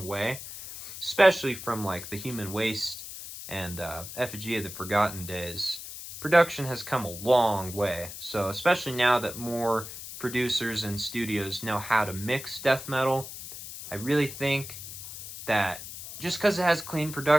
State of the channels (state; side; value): noise; left; hiss, 11 dB below the sound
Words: way, especially from like the Human Waste and Effigy of the Forgotten days. Production has come a long way, so especially now that more producers and studios know how to mix death metal, I really think that just because it has clean